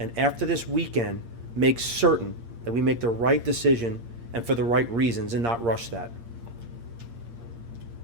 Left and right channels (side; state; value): left; late; 8.7 ms